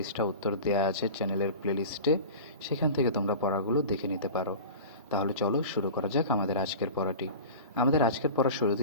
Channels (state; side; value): inverted; both; correlation -0.35